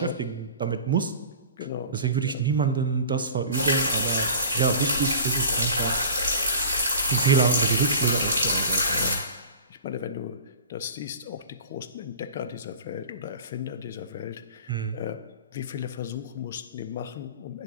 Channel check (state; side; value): inverted; both; correlation -0.39